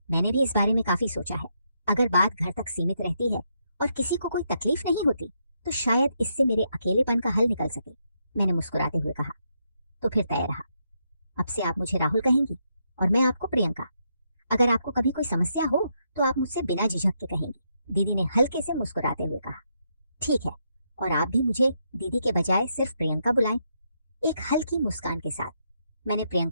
मैंने भी इस बारे में काफी सोचा है। अगर बात घर तक सीमित रहती है और किसी को कोई तकलीफ नहीं होती तो शायद इससे मेरे अकेलेपन का हल निकल सके। मैंने मुस्कुराते हुए कहा, तो फिर तय रहा। अब से आप मुझे राहुल कहेंगी और मैं आपको प्रियंका। अगर आपको कभी कोई समस्या हो तो आप मुझसे बिना झिझक के कहेंगी। दीदी ने हल्के से मुस्कुराते हुए कहा, ठीक है, और आप भी मुझे दीदी के बजाय सिर्फ प्रियंका बुलाएं। एक हल्की मुस्कान के साथ मैंने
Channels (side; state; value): both; inverted; correlation -0.79